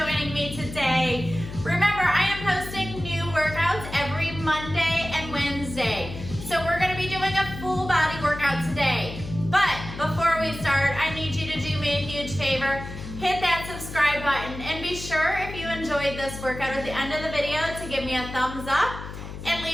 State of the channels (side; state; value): left; noise; hum, 10 dB below the sound